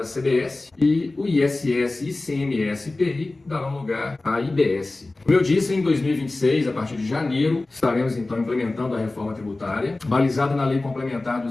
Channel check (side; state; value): right; quieter; 3.1 dB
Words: CBS e o ISS, ICMS e IPI darão lugar à IBS. Como eu disse, em 2026, a partir de janeiro, estaremos então implementando a reforma tributária, balizada na Lei Complementar